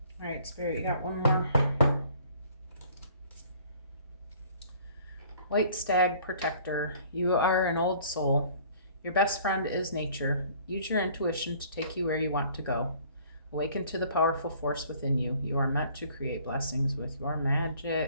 All right, Spirit, you got one more. White Stag Protector. You are an old soul. Your best friend is nature. Use your intuition to take you where you want to go. Awaken to the powerful force within you. You are meant to create blessings with your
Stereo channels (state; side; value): inverted; both; correlation -0.55